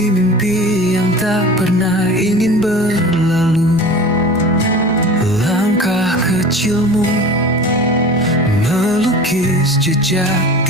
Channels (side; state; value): both; normal; correlation 0.37